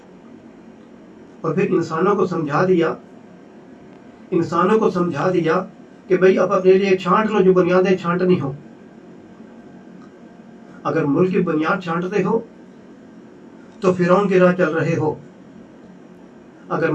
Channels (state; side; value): identical; both; correlation 1.00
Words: اور پھر انسانوں کو سمجھا دیا کہ بھئی اب اپنے لیے چھانٹ لو جو بنیادیں چھانٹنی ہو. اگر ملک کی بنیاد چھانٹتے ہو تو فرعون کی راہ چل رہے ہو، اگر